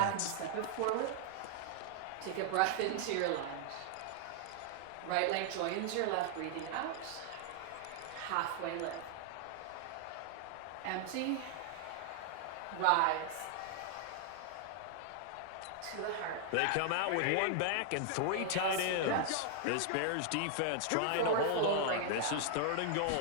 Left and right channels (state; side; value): different; both; correlation 0.00